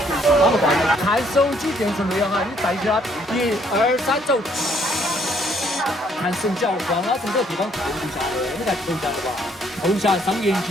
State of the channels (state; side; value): normal; both; correlation 0.66